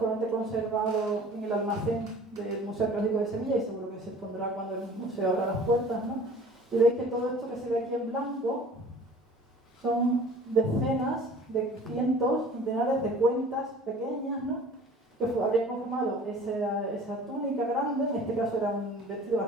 conservado en el almacén del Museo Arqueológico de Sevilla y seguro que se expondrá cuando el museo abra las puertas, ¿no? Y veis que todo esto que se ve aquí en blanco son decenas de cientos, centenares de cuentas pequeñas, ¿no? Que habrían conformado esa túnica grande, en este caso era un vestido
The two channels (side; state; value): both; normal; correlation 0.47